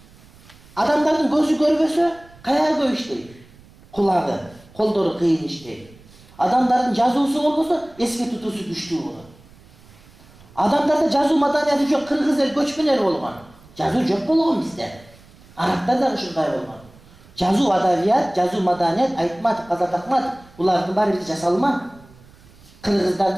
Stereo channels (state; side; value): noise; right; rumble, 25 dB below the sound